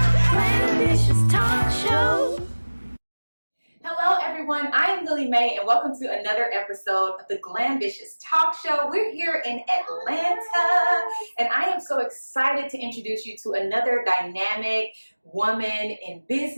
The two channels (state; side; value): inverted; both; correlation -1.00